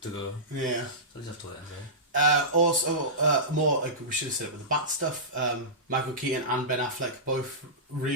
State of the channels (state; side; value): normal; both; correlation -0.18